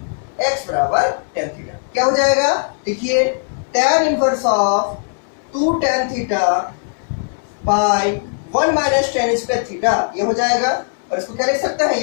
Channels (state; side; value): silent; right; digital silence